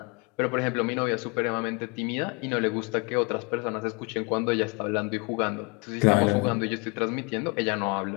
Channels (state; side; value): quieter; right; 31.6 dB